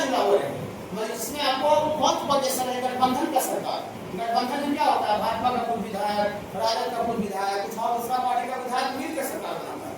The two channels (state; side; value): identical; both; correlation 1.00